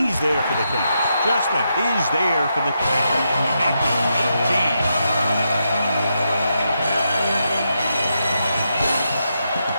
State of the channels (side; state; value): both; inverted; correlation -0.83